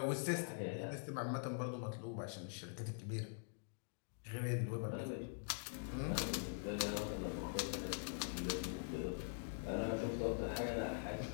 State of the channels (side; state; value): right; silent; digital silence